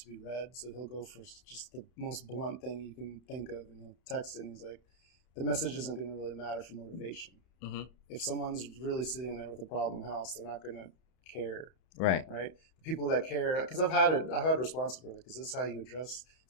be read, so he'll go for just the most blunt thing you can think of, and he'll text it, and he's like, the message isn't going to really matter for motivation. Mm-hmm. If someone's really sitting there with a problem house, they're not going to care. Right. The people that care, because I've had responses where, like, is this how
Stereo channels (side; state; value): right; late; 31 ms